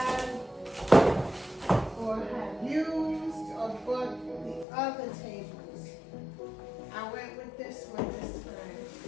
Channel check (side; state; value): right; drops out; at 4.7 s